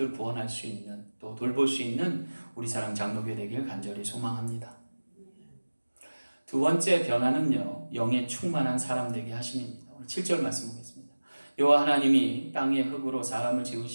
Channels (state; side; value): inverted; both; correlation -1.00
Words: 구원할 수 있는 또 돌볼 수 있는 우리 사랑 장로교회 되길 간절히 소망합니다. 두 번째 변화는요, 영에 충만한 사람 되게 하심입니다. 오늘 7절 말씀 보겠습니다. 여호와 하나님이 땅의 흙으로 사람을